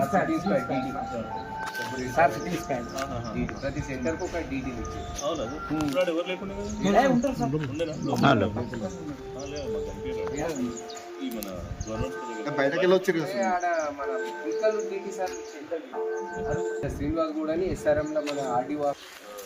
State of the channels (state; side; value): identical; both; correlation 1.00